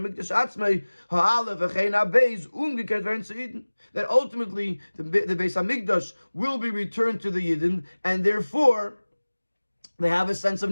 Mikdash atzmei ha'ale v'chein ha'beis umgekehrt werden zu Yidden. That ultimately the Beis HaMikdash will be returned to the Yidden, and therefore they have a sense of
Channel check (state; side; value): inverted; both; correlation -1.00